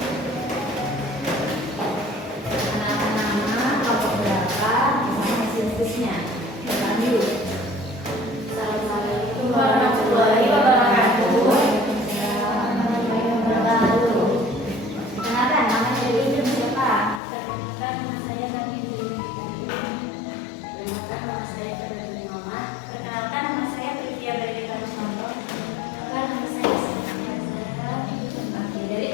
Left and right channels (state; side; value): drops out; right; at 17.2 s